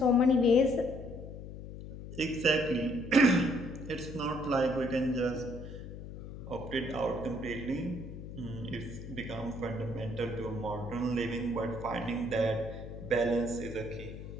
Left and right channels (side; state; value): left; noise; hum, 11 dB below the sound